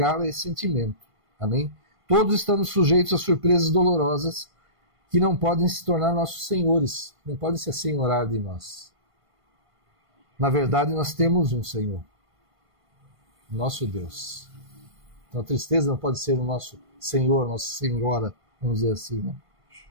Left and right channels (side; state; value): left; late; 1.5 ms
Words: a esse sentimento, amém? Todos estamos sujeitos a surpresas dolorosas que não podem se tornar nossos senhores, não podem se assenhorar de nós. Na verdade, nós temos um Senhor, nosso Deus. Então a tristeza não pode ser o nosso Senhor, nossa Senhora, vamos dizer assim, né?